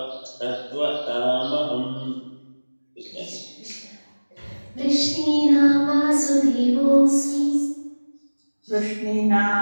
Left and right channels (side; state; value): both; inverted; correlation -1.00